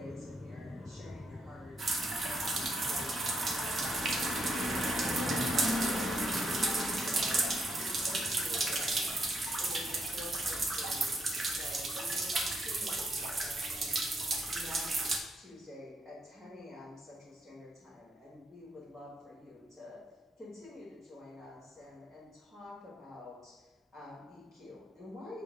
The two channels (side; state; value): both; normal; correlation 0.76